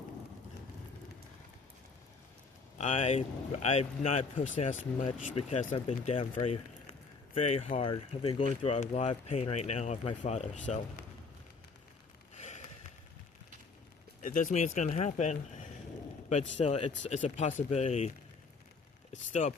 I'm not posting as much because I've been down very, very hard. I've been going through a lot of pain right now of my father, so it doesn't mean it's gonna happen, but still, it's a possibility. It's still a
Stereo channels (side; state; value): right; quieter; 4.5 dB